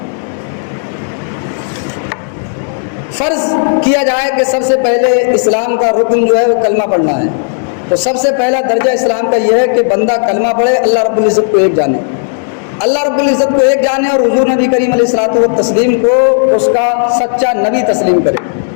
فرض کیا جائے کہ سب سے پہلے اسلام کا رکن جو ہے وہ کلمہ پڑھنا ہے، تو سب سے پہلا درجہ اسلام کا یہ ہے کہ بندہ کلمہ پڑھے، اللہ رب العزت کو ایک جانے، اللہ رب العزت کو ایک جانے، اور حضور نبی کریم علیہ الصلوۃ والتسلیم کو اس کا سچا نبی تسلیم کرے۔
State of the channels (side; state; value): right; silent; digital silence